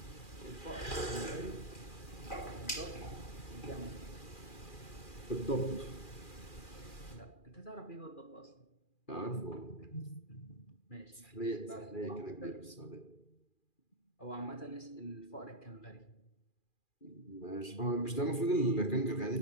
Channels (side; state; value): right; late; 2.4 ms